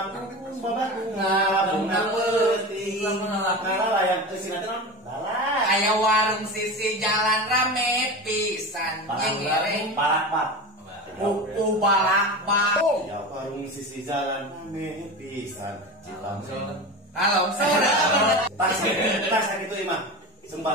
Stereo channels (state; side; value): normal; both; correlation 0.27